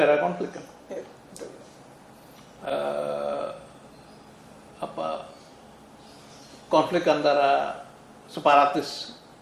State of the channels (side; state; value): both; identical; correlation 1.00